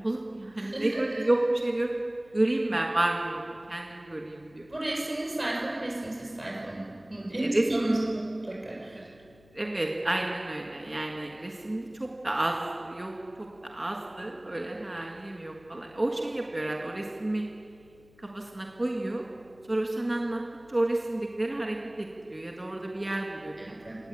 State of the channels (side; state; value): left; noise; hum, 27 dB below the sound